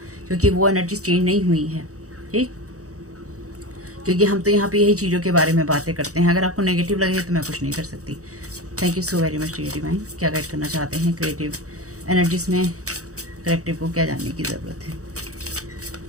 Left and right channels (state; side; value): late; left; 0.65 ms